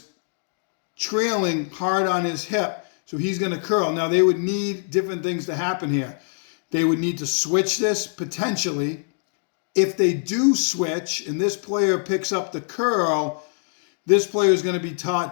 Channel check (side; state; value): right; silent; digital silence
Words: trailing hard on his hip, so he's going to curl. Now, they would need different things to happen here. They would need to switch this, potentially. If they do switch, and this player picks up the curl, this player is going to be